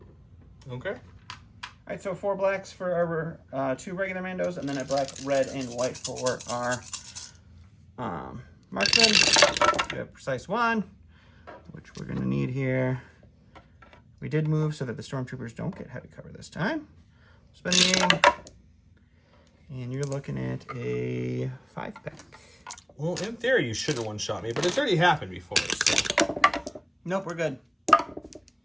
Okay. All right, so 4 blacks for our 2 regular Mandos, and then a black, red, and white for our marksman. We have precise 1, which we're going to need here. We did move so that the Stormtroopers don't get heavy cover this time. Spend the aim, and you're looking at a 5-pack. Well, in theory, you should have one-shot me, but it's already happened before. So. Nope, we're good.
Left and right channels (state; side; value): identical; both; correlation 1.00